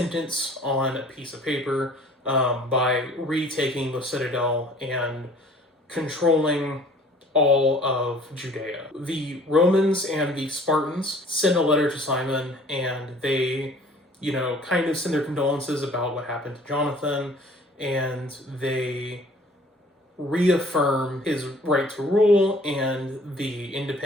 on a piece of paper, by retaking the citadel and controlling all of Judea. The Romans and the Spartans send a letter to Simon, and they, you know, kind of send their condolences about what happened to Jonathan, and they reaffirm his right to rule and the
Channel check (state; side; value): normal; both; correlation 0.52